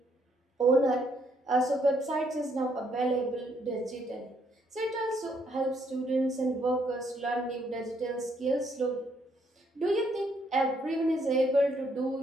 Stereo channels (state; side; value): normal; both; correlation 0.71